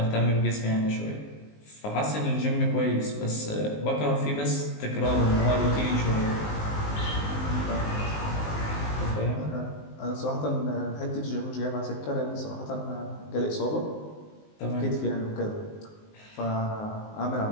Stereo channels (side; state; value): right; late; 19 ms